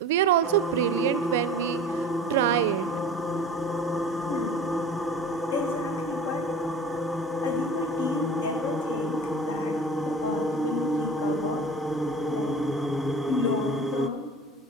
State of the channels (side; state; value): both; normal; correlation 0.39